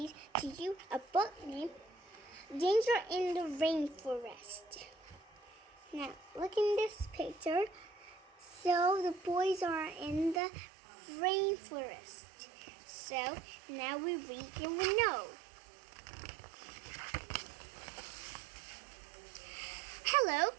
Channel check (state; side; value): drops out; left; at 10.4 s